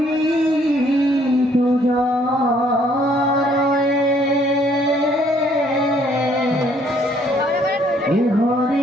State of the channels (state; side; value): normal; both; correlation 0.64